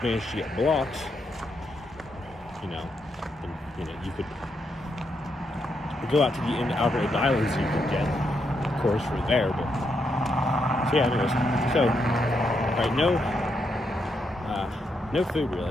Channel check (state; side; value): normal; both; correlation 0.80